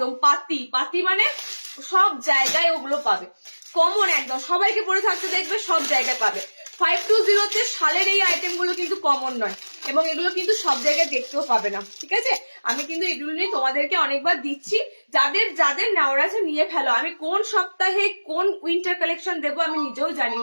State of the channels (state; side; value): inverted; both; correlation -1.00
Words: পাতি পাতি, মানে সব জায়গায় ওগুলো পাবে, কমন একদম, সবাইকে পরে থাকতে দেখবে, সব জায়গায় পাবে। 520-তে শালের এই আইটেম গুলো কিন্তু কমন নয়, এবং এগুলো কিন্তু সব জায়গায় দেখতেও পাবে না, ঠিক আছে। আমি কিন্তু এগুলো নিয়ে তোমাদেরকে অনেকবার দিচ্ছি, যাদের যাদের নেওয়ার আছে নিয়ে ফেলো। আমি কোন সপ্তাহে কোন উইন্টার কালেকশন দেবো আমি নিজেও জানি